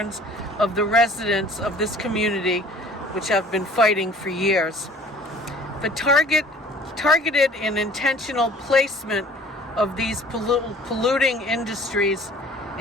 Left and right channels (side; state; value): both; normal; correlation 0.50